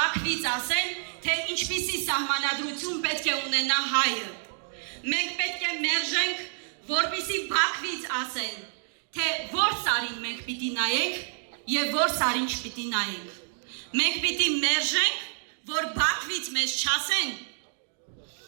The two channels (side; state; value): left; silent; digital silence